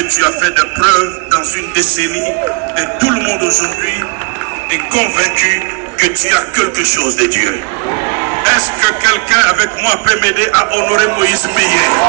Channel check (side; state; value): left; quieter; 32.7 dB